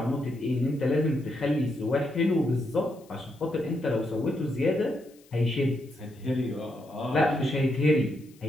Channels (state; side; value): noise; left; hiss, 29 dB below the sound